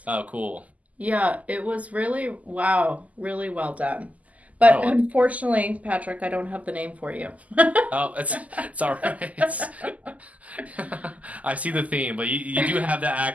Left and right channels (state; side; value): late; left; 0.074 ms